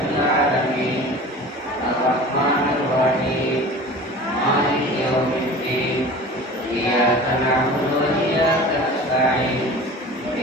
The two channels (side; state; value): both; normal; correlation 0.39